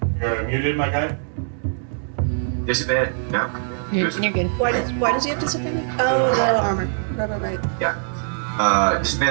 You're muted, my guy? Disadvantage. No. you're good. Why does he have disadvantage? Oh, the armor. Right. Yeah.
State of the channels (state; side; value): silent; left; digital silence